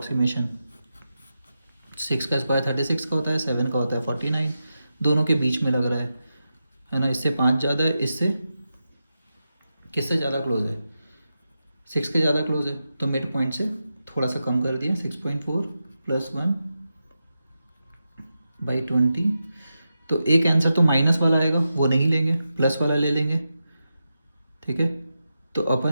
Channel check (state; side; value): inverted; both; correlation -0.89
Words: 6 का स्क्वायर 36 का होता है, 7 का होता है 49, दोनों के बीच में लग रहा है ना। इससे 5 ज़्यादा है, इससे किससे ज़्यादा क्लोज है, 6 के ज़्यादा क्लोज है, तो मिड पॉइंट से थोड़ा सा कम कर दिया, 6.4 + 1/20। तो एक आंसर तो माइनस वाला आएगा, वो नहीं लेंगे, प्लस वाला ले लेंगे। ठीक है, तो